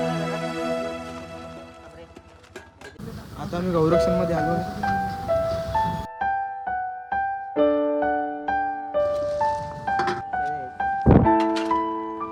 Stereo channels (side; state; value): both; identical; correlation 1.00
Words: आता मी गौरक्षणमध्ये आलो आहे.